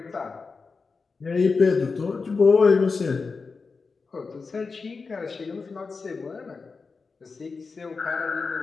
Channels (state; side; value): quieter; right; 4.6 dB